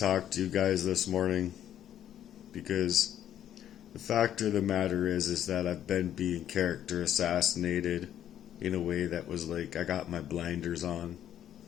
to you guys this morning because the fact of the matter is that I've been being character assassinated in a way that was like I got my blinders on.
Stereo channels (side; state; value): right; quieter; 10.8 dB